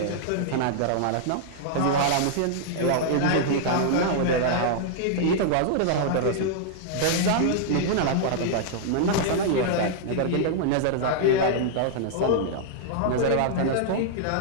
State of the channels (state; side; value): different; both; correlation -0.01